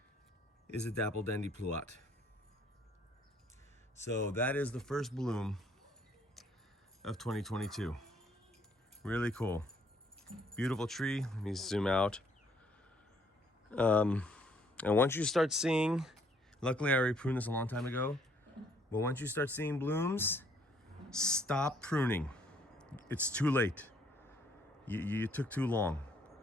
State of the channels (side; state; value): both; normal; correlation 0.65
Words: is a Dapple Dandy Pluot. So that is the first bloom of 2022. Really cool. Beautiful tree. Let me zoom out. And once you start seeing, luckily I already pruned this a long time ago, but once you start seeing blooms, stop pruning. It's too late. You took too long.